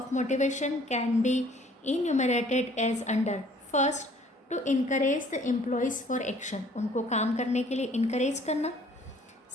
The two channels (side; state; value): both; normal; correlation 0.57